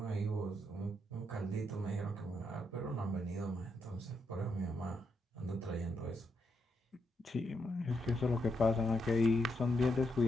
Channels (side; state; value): both; normal; correlation 0.81